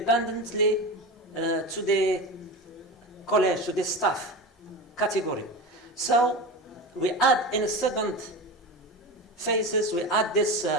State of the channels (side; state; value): both; normal; correlation 0.26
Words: to the college, to the staff category. So we add in a second phases, we add this,